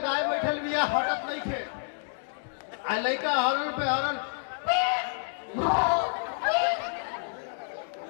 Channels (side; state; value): right; silent; digital silence